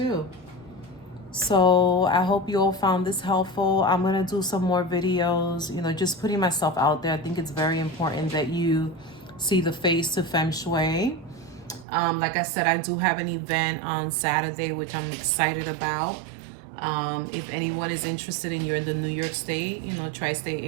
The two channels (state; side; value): drops out; left; at 11.9 s